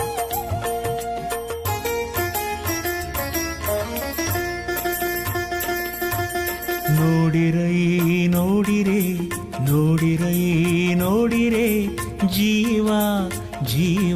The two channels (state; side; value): identical; both; correlation 1.00